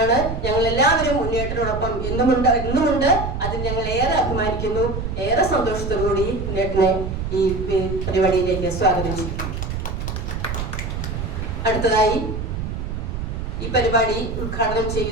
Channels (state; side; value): noise; right; rumble, 4 dB below the sound